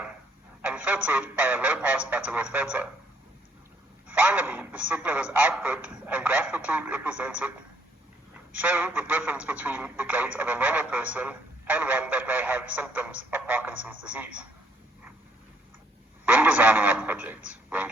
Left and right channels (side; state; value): both; normal; correlation 0.68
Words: and filtered by a low-pass Butterworth filter. Finally, the signal was output and graphically represented, showing the difference between the gait of a normal person and one that may have symptoms of Parkinson's disease. When designing our project, we